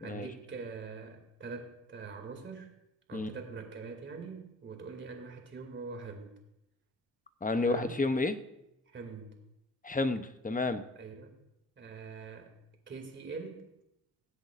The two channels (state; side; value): normal; both; correlation 0.51